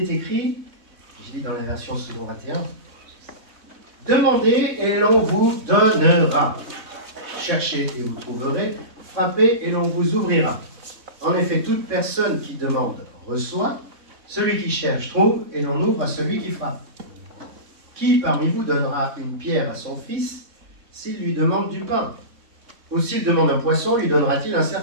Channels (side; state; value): left; late; 3.6 ms